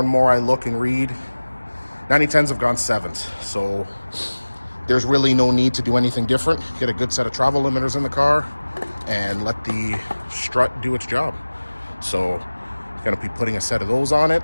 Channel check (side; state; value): both; inverted; correlation -1.00